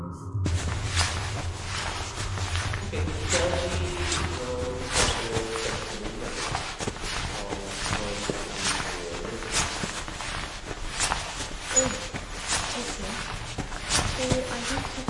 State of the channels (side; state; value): both; identical; correlation 1.00